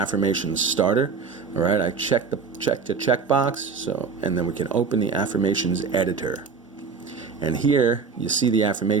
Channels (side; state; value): left; quieter; 5.4 dB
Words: starter. All right, I checked the checkbox, so, and then we can open the affirmations editor. And here you see the